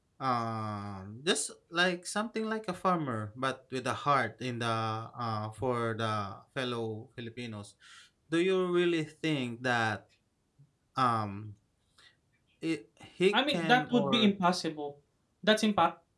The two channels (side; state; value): both; identical; correlation 1.00